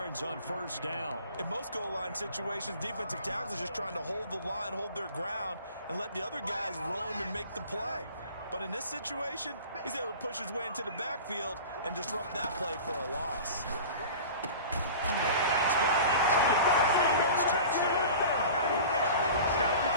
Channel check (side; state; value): both; inverted; correlation -0.38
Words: on 1st down. In most goal line situations, defensive tackles are just trying to hold the line, hold their ground, and let the other guys roam and make the play. But in this situation, he's able to push his way into the backfield and disrupt that play for a loss. That's good. Eagles touchdown.